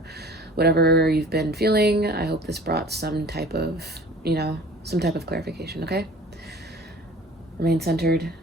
you've been feeling. I hope this brought some type of, you know, some type of clarification, okay? Remain centered,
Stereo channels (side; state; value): both; normal; correlation 0.46